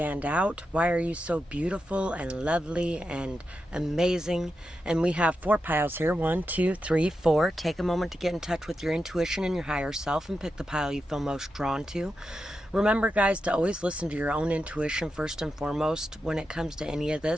out? Why are you so beautiful and lovely and amazing? And we have 4 piles here. 1, 2, 3, 4. Take a moment to get in touch with your intuition and your higher self and pick the pile you feel most drawn to. Remember, guys, to always listen to your own intuition first and foremost when it comes to any of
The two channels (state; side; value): normal; both; correlation 0.88